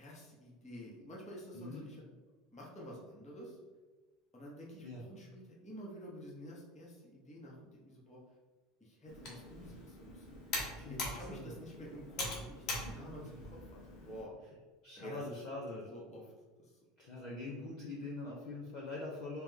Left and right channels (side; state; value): both; normal; correlation 0.34